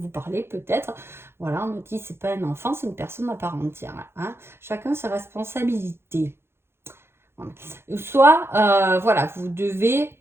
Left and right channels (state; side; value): late; left; 0.12 ms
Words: parler peut-être, voilà, on me dit c'est pas un enfant, c'est une personne à part entière, hein, chacun ses responsabilités. Voilà. Soit, voilà, vous